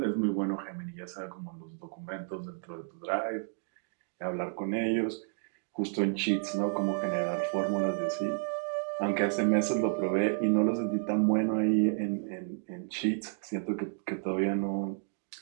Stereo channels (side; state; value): left; silent; 57 dB below the other